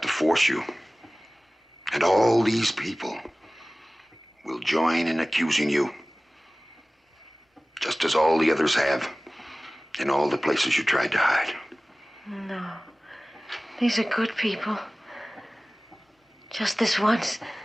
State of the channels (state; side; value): normal; both; correlation 0.98